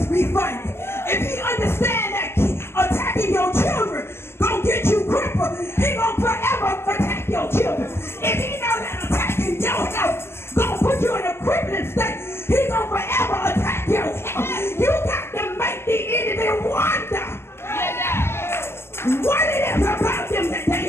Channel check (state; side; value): late; right; 0.12 ms